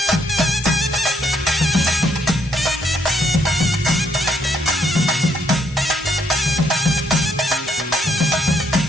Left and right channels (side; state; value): both; normal; correlation 0.73